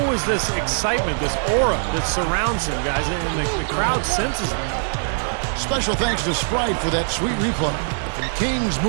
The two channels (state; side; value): silent; left; 55 dB below the other